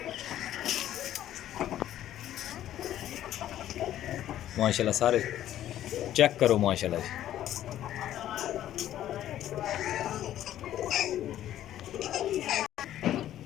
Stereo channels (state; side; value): quieter; right; 12.2 dB